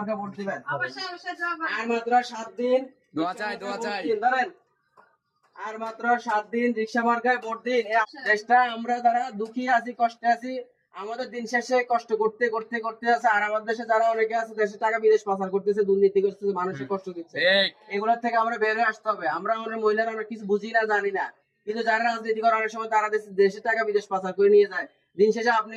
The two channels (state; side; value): identical; both; correlation 1.00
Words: ভোট দিবেন। আর মাত্র 7 দিন দোয়া চাই ধরেন, আর মাত্র 7 দিন রিকশা মার্কায় ভোট দিন। এই দেশটা আমরা যারা দুঃখী আছি, কষ্টে আছি, আমাদের দিন শেষে কষ্ট করতে করতে করতে আছে, আর আমাদের দেশে যারা অনেকে আছে দেশের টাকা বিদেশ পাচার করতেছে, দুর্নীতি করতেছে, মানুষের কষ্ট দিচ্ছে, এগুলোর থেকে আমরা বের হয়ে আসতে হবে। আমরা আমাদের মহিলারা আমরা কিছু বুঝি না, জানি না, কিন্তু যারা রাজনীতি করে অনেক সময় তারা দেশের টাকা বিদেশ পাচার করে নিয়ে যায়। দিন শেষে আপনি